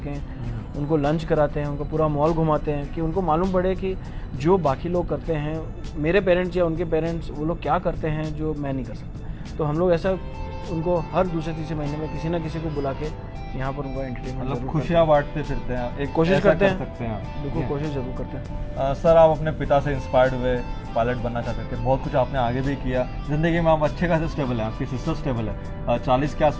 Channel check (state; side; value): identical; both; correlation 1.00